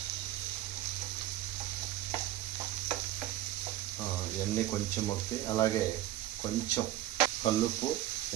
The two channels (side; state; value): left; quieter; 14.0 dB